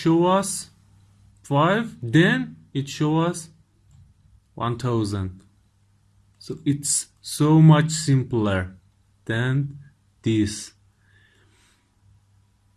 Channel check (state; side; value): identical; both; correlation 1.00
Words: us 5, then it show us 1000. So it's so much simpler than this.